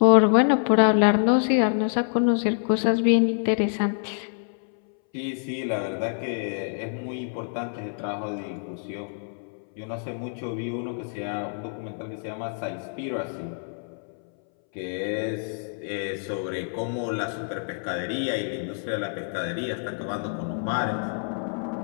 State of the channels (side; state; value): right; silent; 61 dB below the other